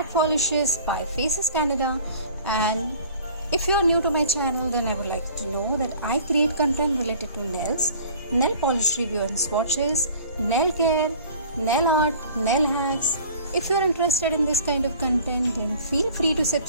polishes by Faces Canada, and if you are new to my channel, then I would like to know that I create content related to nails, nail polish review and swatches, nail care, nail art, nail hacks. If you are interested in this kind of content, then feel free to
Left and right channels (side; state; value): both; inverted; correlation -0.47